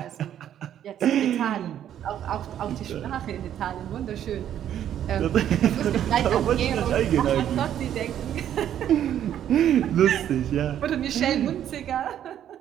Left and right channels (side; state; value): left; quieter; 10.5 dB